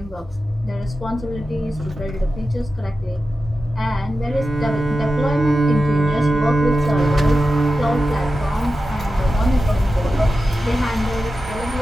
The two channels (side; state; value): both; normal; correlation 0.92